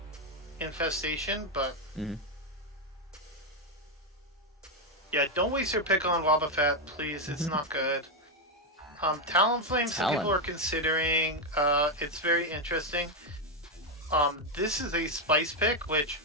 Infestation, but yeah, don't waste your pick on Wobbuffet, please. It's not good. Talonflame, some people are considering. It's very interesting. This is a spice pick, which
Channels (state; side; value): normal; both; correlation 0.04